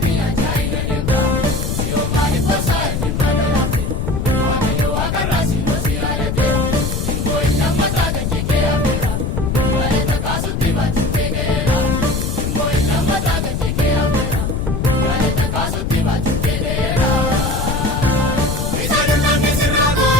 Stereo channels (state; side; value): noise; left; rumble, 1 dB below the sound